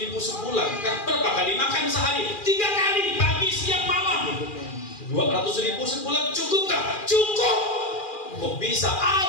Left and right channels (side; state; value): right; late; 2.4 ms